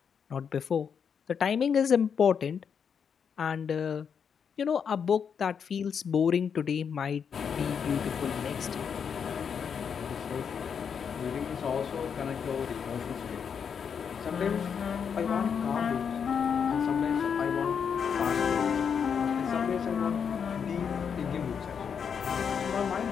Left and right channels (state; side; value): quieter; right; 7.0 dB